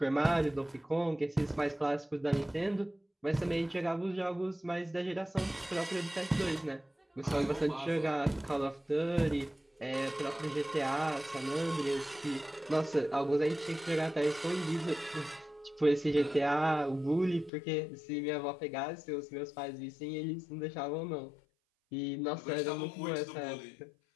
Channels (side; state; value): right; drops out; at 17.5 s